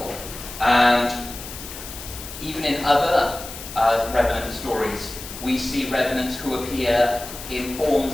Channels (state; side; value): noise; left; hiss, 12 dB below the sound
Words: And even in other Revenant stories, we see Revenants who appear in